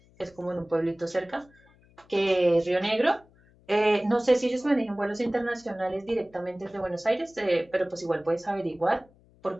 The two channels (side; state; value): left; noise; hum, 29 dB below the sound